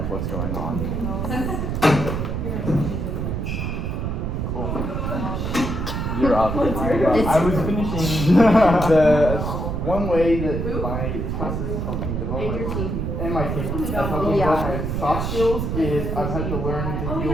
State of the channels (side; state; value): right; noise; rumble, 2 dB below the sound